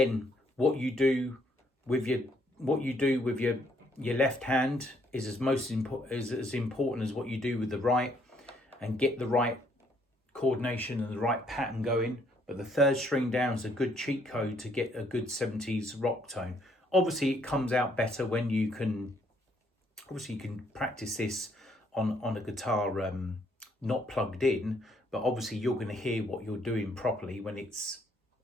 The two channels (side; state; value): both; normal; correlation 0.68